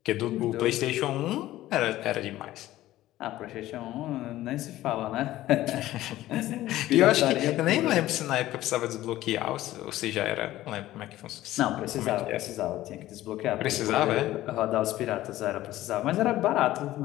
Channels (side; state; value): right; quieter; 15.2 dB